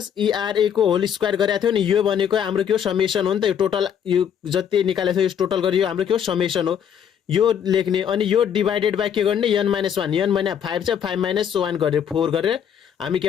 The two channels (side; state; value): right; quieter; 8.5 dB